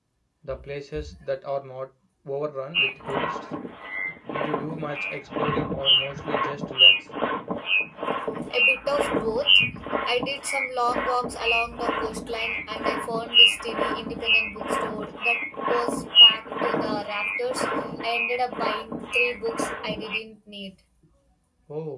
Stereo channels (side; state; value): both; identical; correlation 1.00